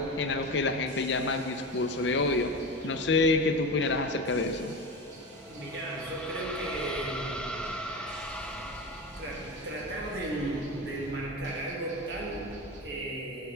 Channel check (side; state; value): both; normal; correlation 0.25